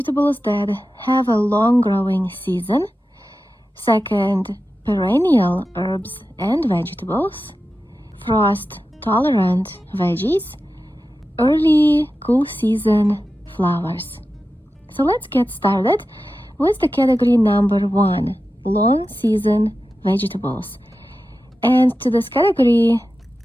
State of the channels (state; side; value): normal; both; correlation 0.92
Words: that have a long growing season. Second, perennial herbs and vegetables, frost-tolerant veggies, early cool season flowers. So let's get started with the category number 1, long season vegetables. And to this category,